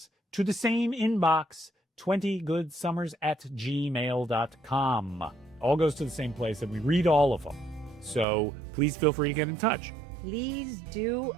to the same inbox, 20goodsummers@gmail.com. All goes to the same place, and we read all of them. So please feel free to get in touch. Please do.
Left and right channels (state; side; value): drops out; left; at 8.2 s